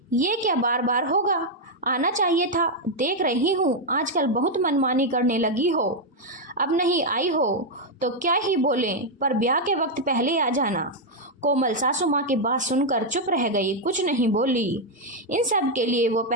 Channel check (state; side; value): normal; both; correlation 0.00